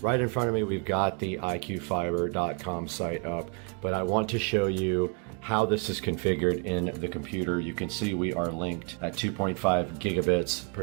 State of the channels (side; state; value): left; quieter; 39.2 dB